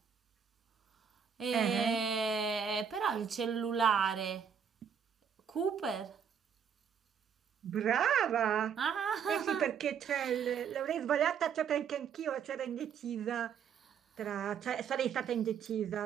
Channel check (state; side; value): quieter; left; 7.5 dB